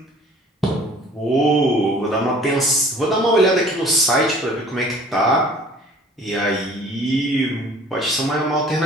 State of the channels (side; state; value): both; normal; correlation 0.50